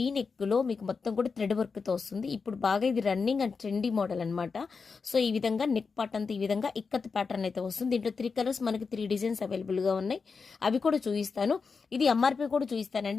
నెక్లో మీకు మొత్తం కూడా థ్రెడ్ వర్క్తో వస్తుంది. ఇప్పుడు బాగా ఇది రన్నింగ్ అండ్ ట్రెండీ మోడల్ అనమాట. సో ఈ విధంగా నెక్ పార్ట్ అంతా ఈ విధంగా ఇక్కత్ ప్యాటర్న్ అయితే వస్తుంది. దీంట్లో 3 కలర్స్ మనకి 3 డిజైన్స్ అవైలబుల్గా ఉన్నాయి. అవి కూడా చూపిస్తాను. ఇది ఎంఆర్పీ కూడా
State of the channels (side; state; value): right; quieter; 5.0 dB